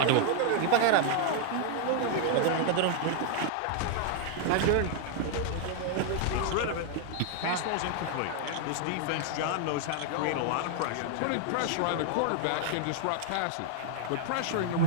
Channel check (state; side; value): different; both; correlation 0.00